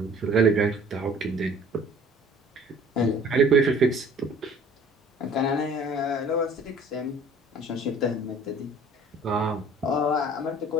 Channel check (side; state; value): both; normal; correlation 0.51